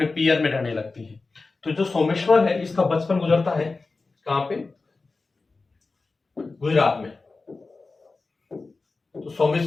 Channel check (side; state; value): right; quieter; 3.8 dB